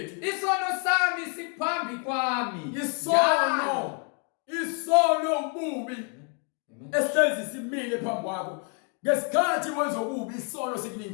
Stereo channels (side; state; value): right; quieter; 38.0 dB